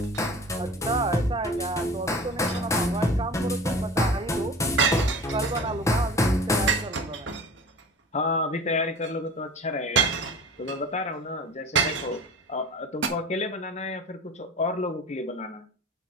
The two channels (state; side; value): normal; both; correlation 0.38